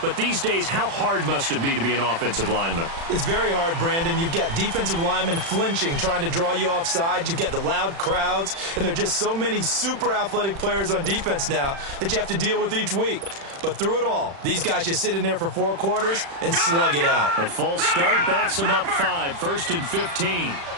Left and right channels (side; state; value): left; late; 36 ms